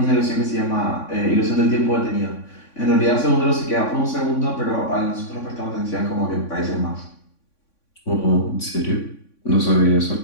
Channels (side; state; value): right; late; 3.5 ms